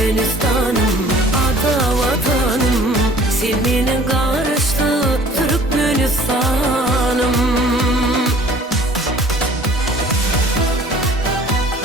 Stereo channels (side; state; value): both; normal; correlation 0.51